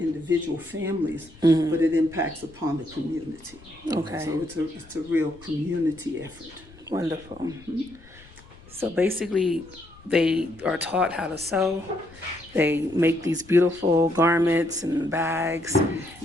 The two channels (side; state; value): left; noise; rumble, 23 dB below the sound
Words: families, but it impacts upon the community. Okay. So it's a real community effort. Wonderful. So basically, they are taught how to sew. They make these beautiful garments and bags.